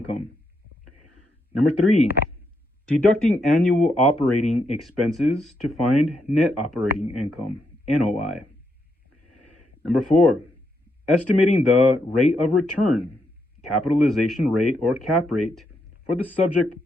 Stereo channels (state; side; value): normal; both; correlation 0.80